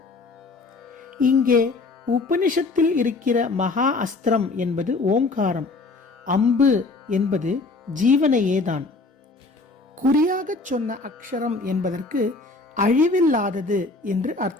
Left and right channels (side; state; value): right; quieter; 3.6 dB